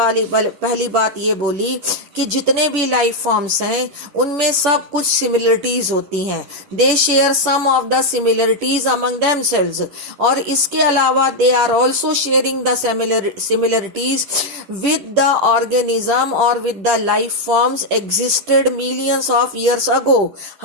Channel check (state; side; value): late; left; 10 ms